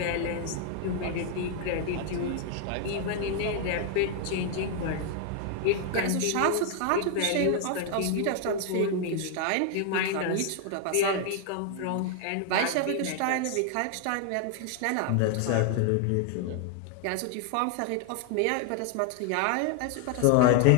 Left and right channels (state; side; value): different; both; correlation 0.00